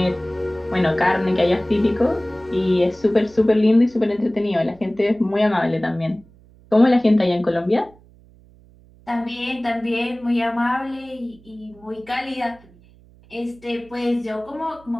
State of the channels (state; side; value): noise; right; hum, 27 dB below the sound